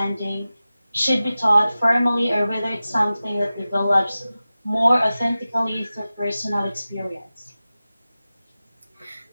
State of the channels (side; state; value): both; inverted; correlation -0.95